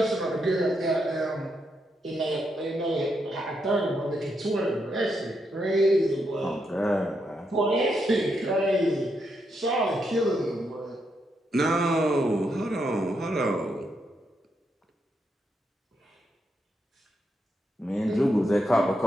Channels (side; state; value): both; normal; correlation 0.81